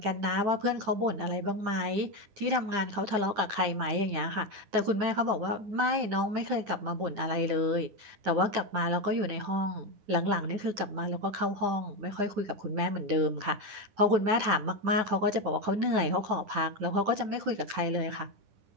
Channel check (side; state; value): left; late; 10 ms